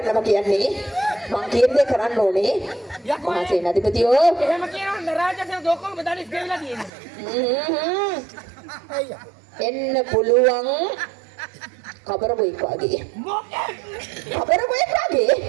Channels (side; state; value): left; drops out; at 6.9 s